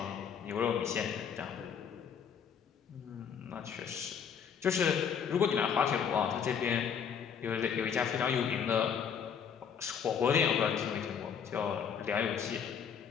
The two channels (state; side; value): quieter; right; 7.4 dB